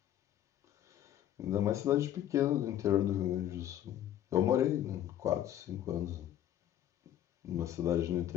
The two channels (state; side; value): quieter; right; 11.5 dB